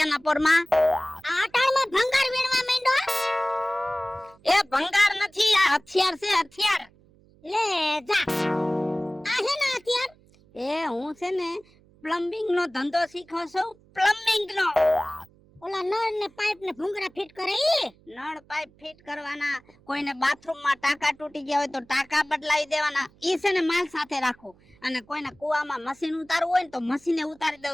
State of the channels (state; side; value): noise; right; hum, 29 dB below the sound